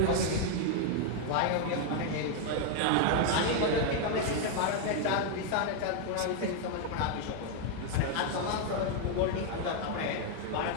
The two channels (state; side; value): different; both; correlation 0.00